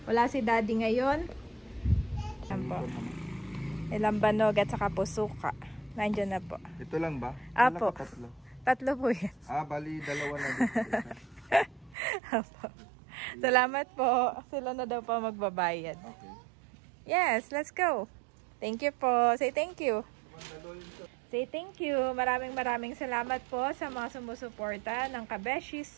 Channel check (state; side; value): drops out; left; at 12.0 s